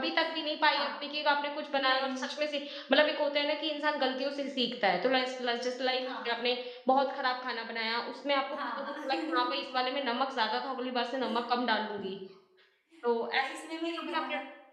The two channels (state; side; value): identical; both; correlation 1.00